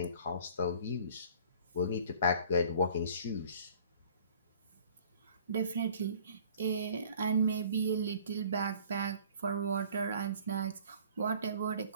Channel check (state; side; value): inverted; both; correlation -0.51